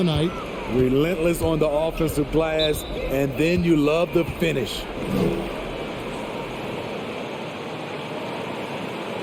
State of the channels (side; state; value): both; identical; correlation 1.00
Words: night. Relentless on the offensive glass, and then you love the finish.